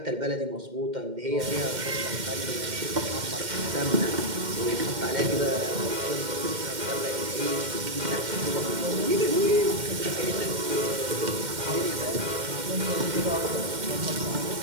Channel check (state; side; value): late; left; 2.1 ms